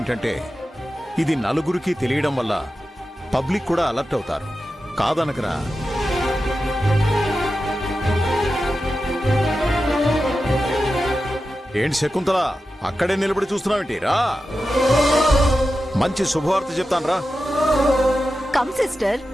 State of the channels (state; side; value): normal; both; correlation 0.92